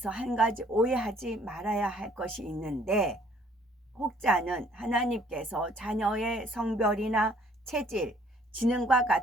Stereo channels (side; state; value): both; normal; correlation 0.60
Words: 한 가지 오해하지 말아야 할 것이 있는데 혹자는 하나님께서 자녀의 성별이나 체질, 지능과